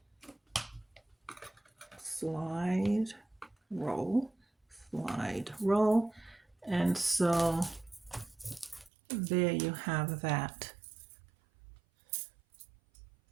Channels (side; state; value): left; drops out; at 8.9 s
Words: Slide, roll, slide, roll. And so there you have that.